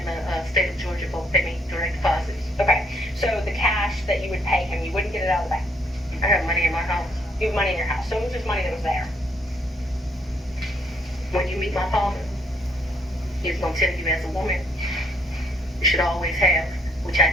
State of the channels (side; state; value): both; normal; correlation 0.68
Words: the state of Georgia both pay me direct deposits. Okay. So the cash that you would pay him, you wouldn't get it out of the bank. I have money in my house. You have money in your house. So it was just money that was there. When you meet my father, he's going to tell you as a woman, you should always have, which I